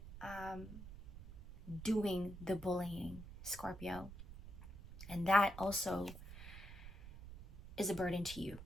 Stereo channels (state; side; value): noise; right; rumble, 13 dB below the sound